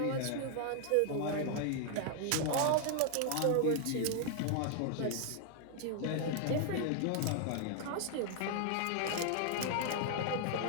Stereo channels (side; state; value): both; different; correlation 0.00